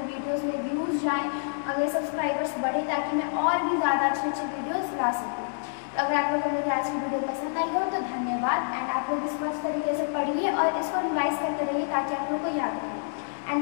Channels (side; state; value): right; silent; digital silence